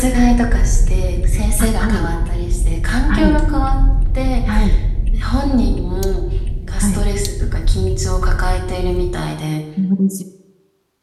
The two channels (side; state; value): both; identical; correlation 1.00